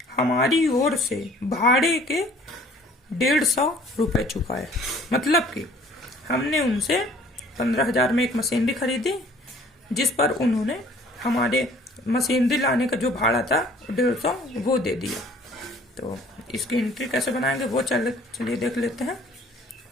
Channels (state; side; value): normal; both; correlation 0.54